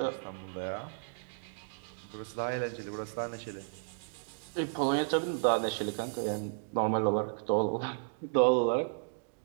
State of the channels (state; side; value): silent; left; digital silence